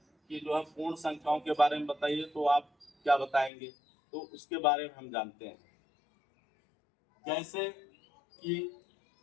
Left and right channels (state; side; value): drops out; right; at 3.5 s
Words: कि जो है पूर्ण संख्याओं के बारे में बताइए तो आप क्या बताएंगे, तो उसके बारे में हम जानते हैं। जैसे कि